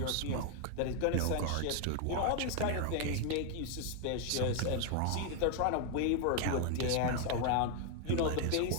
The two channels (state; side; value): different; both; correlation 0.01